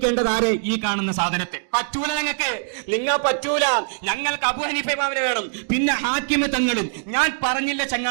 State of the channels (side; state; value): left; silent; digital silence